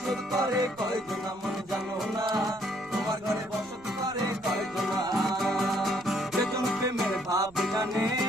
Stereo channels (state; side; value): noise; right; rumble, 25 dB below the sound